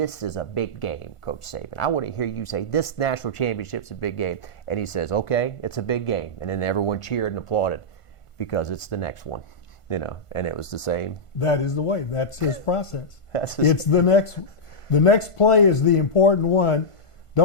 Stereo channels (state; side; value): late; right; 1.5 ms